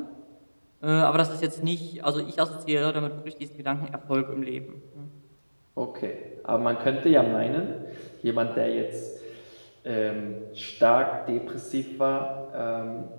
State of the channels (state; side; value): inverted; both; correlation -1.00